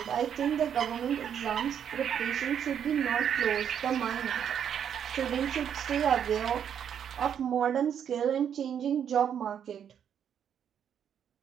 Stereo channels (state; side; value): quieter; left; 8.6 dB